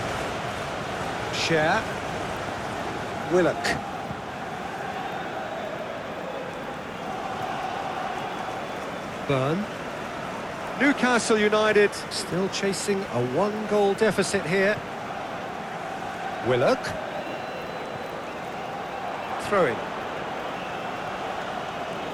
Cher. Willock. Burn. Newcastle United still chasing a one-goal deficit here. Willock. Throw-in.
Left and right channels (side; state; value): both; identical; correlation 1.00